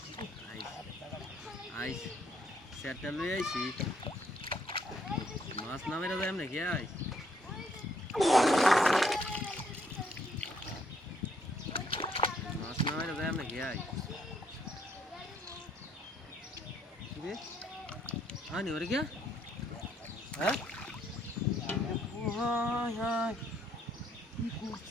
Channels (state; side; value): normal; both; correlation 0.69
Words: আইস সেটটা লয়ে আইছি মাছ না মেরে যায় নাকি আইস মাছ না মেরে যায় নাকি আইস রে আনি ওরে क्या হ্যাঁ হাই হাই কি